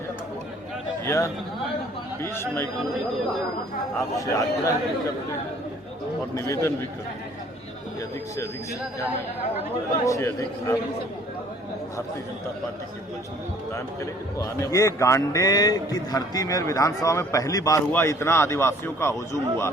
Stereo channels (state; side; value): normal; both; correlation 0.56